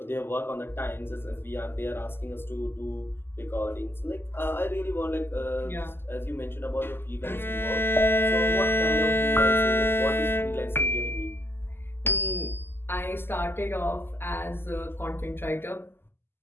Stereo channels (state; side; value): late; right; 0.11 ms